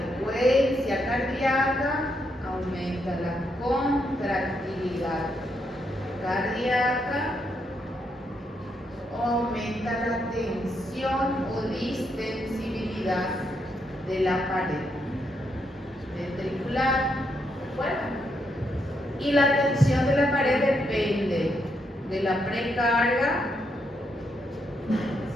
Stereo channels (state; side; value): normal; both; correlation 0.79